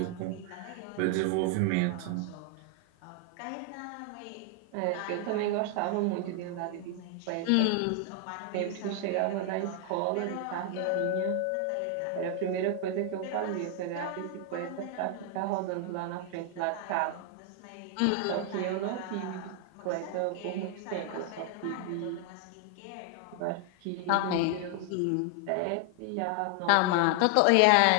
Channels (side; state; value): both; different; correlation 0.00